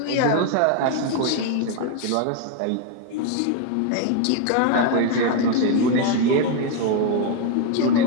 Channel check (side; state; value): both; different; correlation 0.01